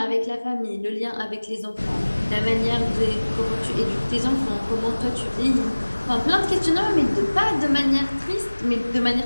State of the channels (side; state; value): both; inverted; correlation -1.00